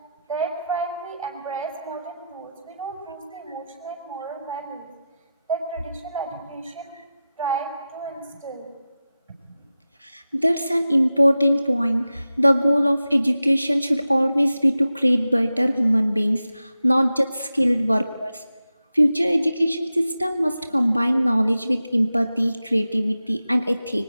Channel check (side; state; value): both; inverted; correlation -0.92